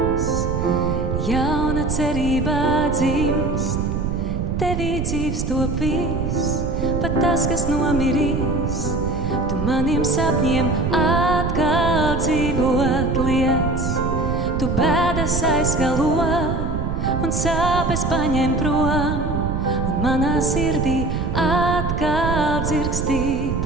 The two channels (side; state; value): right; noise; rumble, 2 dB below the sound